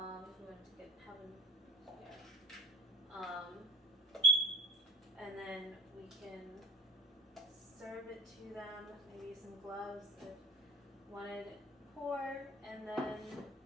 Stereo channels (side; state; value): both; normal; correlation 0.45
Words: we want to have them here. And then we can serve it to them, maybe some gloves if wanted pour, and then